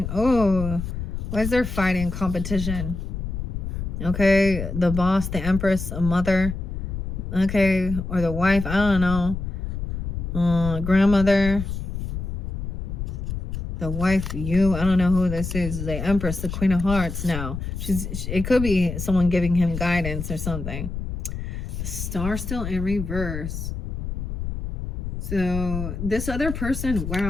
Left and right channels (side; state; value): left; noise; rumble, 5 dB below the sound